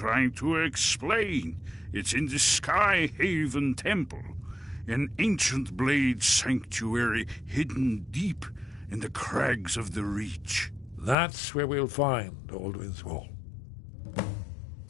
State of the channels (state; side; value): drops out; right; at 11.2 s